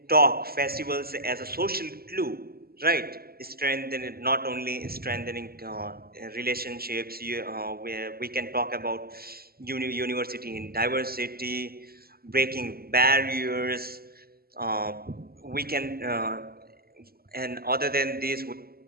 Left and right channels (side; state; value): left; late; 0.45 ms